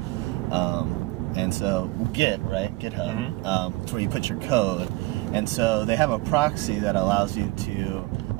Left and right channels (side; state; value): left; quieter; 21.6 dB